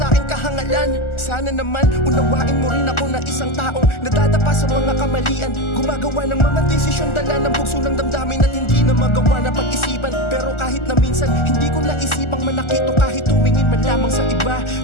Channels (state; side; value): late; right; 1.4 ms